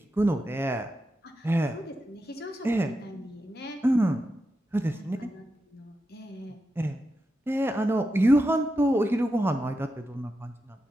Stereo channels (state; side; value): normal; both; correlation 0.88